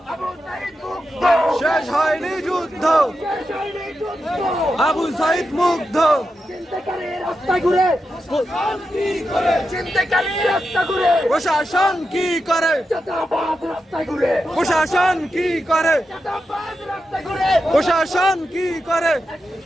শেষ হয়নি যুদ্ধ, আবু সাইদ মুগ্ধ। প্রশাসন কি করে, প্রশাসন কি করে, প্রশাসন কি করে?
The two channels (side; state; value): both; normal; correlation 0.88